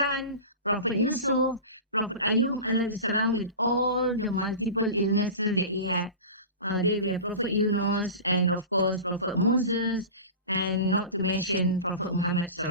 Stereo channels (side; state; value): both; inverted; correlation -0.32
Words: Prophet Yusuf, Prophet Ayub alayhi salam, with all the multiple illnesses that he had. There we have Prophet Yunus, and of course Prophet Moses, and not to mention Prophet Muhammad